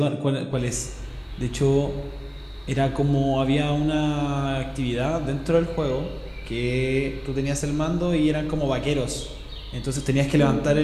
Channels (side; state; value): both; identical; correlation 1.00